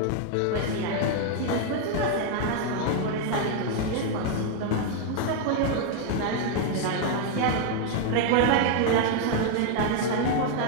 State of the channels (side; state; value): both; different; correlation 0.01